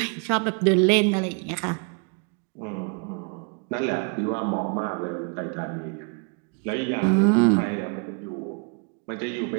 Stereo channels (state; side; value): quieter; left; 36.8 dB